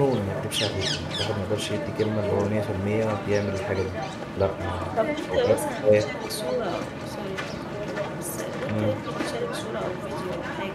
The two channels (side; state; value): both; identical; correlation 1.00